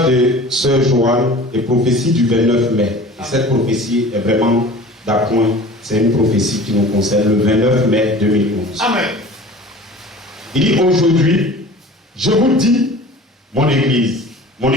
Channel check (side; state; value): both; normal; correlation 0.42